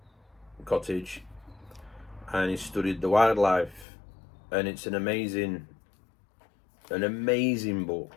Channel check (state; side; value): drops out; right; at 3.9 s